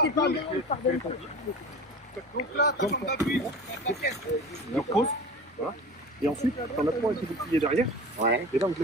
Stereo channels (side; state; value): both; normal; correlation 0.34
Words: t'es pas bien, il pardonne tout. Donc là, t'as ton appui. Alors pause, voilà. Et ensuite, t'en as 3 avec les boucliers derrière. Ouais. Et là, donc